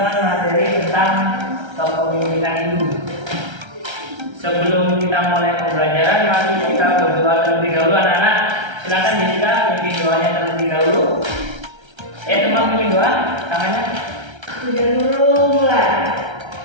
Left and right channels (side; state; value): left; late; 1.3 ms